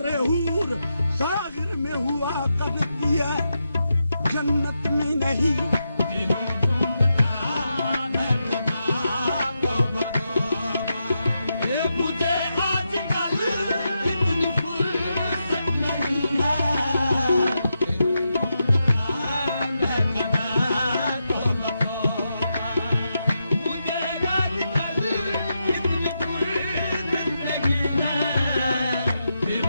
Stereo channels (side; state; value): both; inverted; correlation -0.85